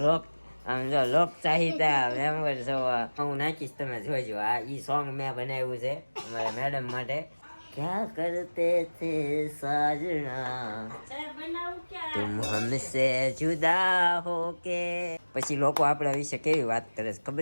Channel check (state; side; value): inverted; both; correlation -1.00